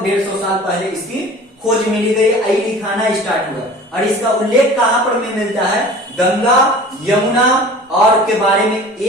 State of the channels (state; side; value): normal; both; correlation 0.42